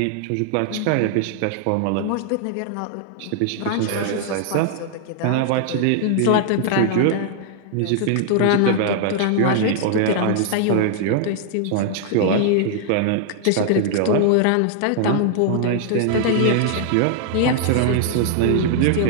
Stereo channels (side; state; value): both; different; correlation 0.00